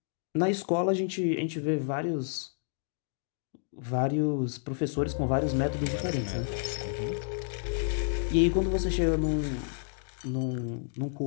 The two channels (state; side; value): silent; right; digital silence